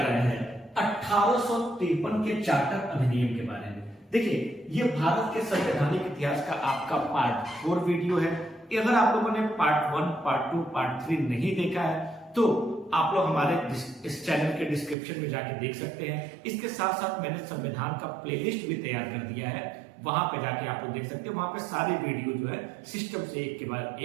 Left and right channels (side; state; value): left; drops out; at 15.0 s